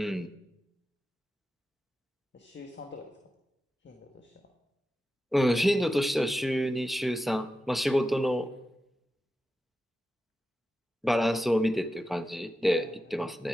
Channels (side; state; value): both; normal; correlation 0.92